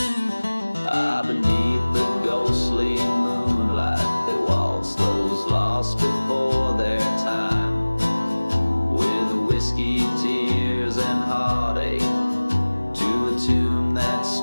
Ah, beneath the ghostly moonlight, they waltz those lost before their time, with whiskey, tears, and heartache, to a tune that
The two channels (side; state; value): both; inverted; correlation -1.00